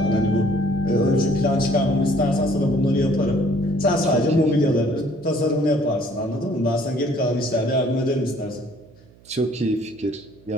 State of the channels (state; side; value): noise; right; hum, 27 dB below the sound